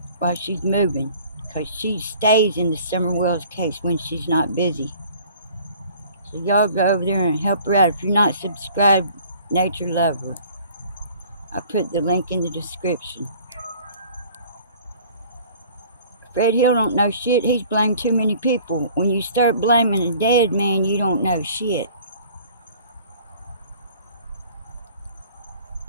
moving. Because she stays in the Summerwells case when she's not busy. So y'all go over there and help her out. If you're not subscribed, Nature Lover, I'll put the link in the description. Fred Hill don't know shit. He's blamed too many people. When you start blaming a dead man, you don't know shit.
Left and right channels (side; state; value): both; inverted; correlation -0.51